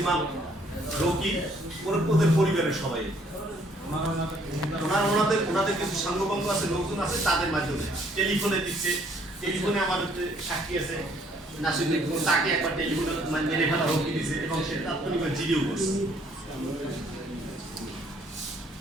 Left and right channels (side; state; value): both; normal; correlation 0.64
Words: ইমাম, রকি, ওদের পরিবারের সবাই ওনাদের কিছু সাঙ্গপাঙ্গ আছে, লোকজন আছে, তাদের মাধ্যমে টেলিফোনে দিচ্ছে। টেলিফোনে আমাদের সাক্ষী আছে নাসিরুদ্দিন, তাকে একবার টেলিফোনে মেরে ফেলা হুমকি দিচ্ছে এবং সে তাৎক্ষণিক জিডিও করছে।